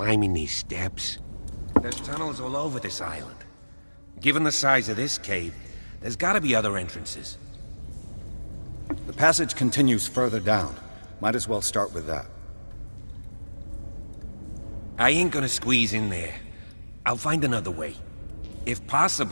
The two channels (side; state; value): both; inverted; correlation -1.00